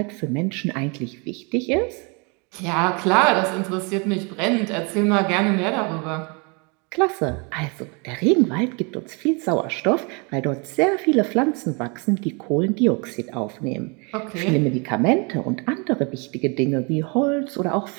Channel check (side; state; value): left; quieter; 32.1 dB